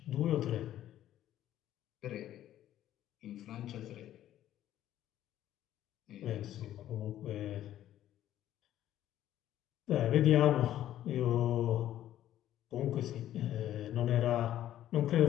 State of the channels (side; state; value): right; quieter; 12.4 dB